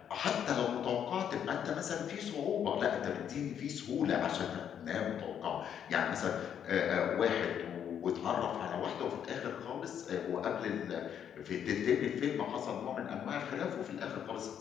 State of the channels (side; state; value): right; quieter; 8.9 dB